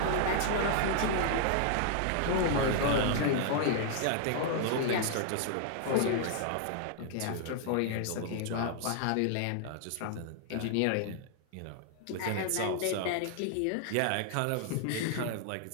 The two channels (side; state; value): both; different; correlation 0.00